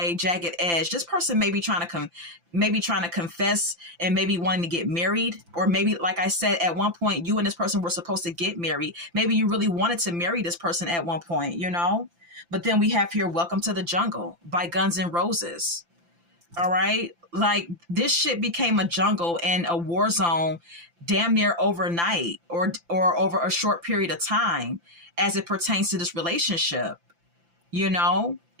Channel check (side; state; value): left; late; 5.9 ms